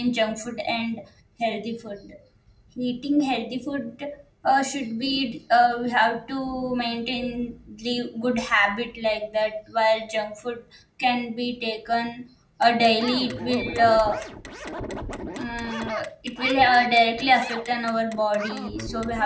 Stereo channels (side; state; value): both; identical; correlation 1.00